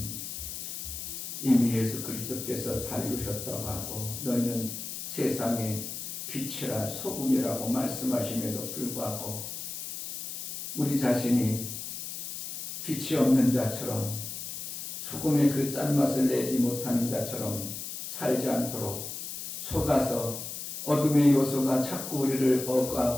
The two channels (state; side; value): noise; left; hiss, 7 dB below the sound